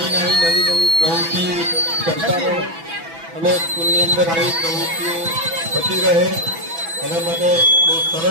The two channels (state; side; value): late; left; 6.0 ms